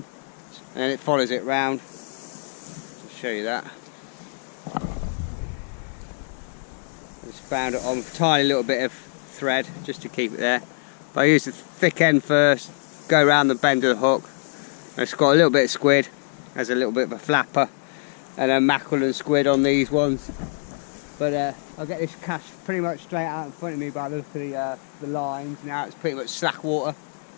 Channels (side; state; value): right; silent; 62 dB below the other